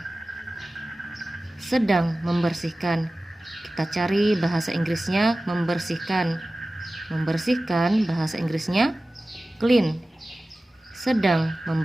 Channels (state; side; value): normal; both; correlation 0.96